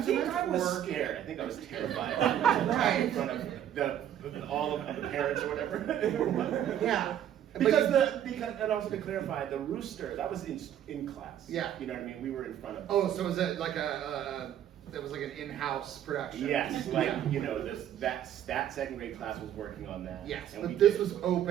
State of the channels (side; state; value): left; quieter; 10.6 dB